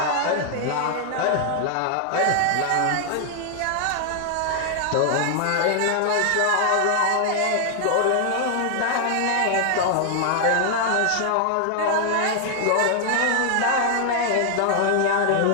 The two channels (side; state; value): both; different; correlation 0.00